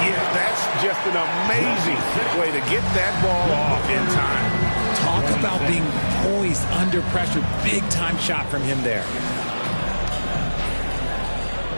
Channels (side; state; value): both; inverted; correlation -1.00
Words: that's just an amazing way to get that ball off in time. Talk about being poised under pressure. Big time shot from him there.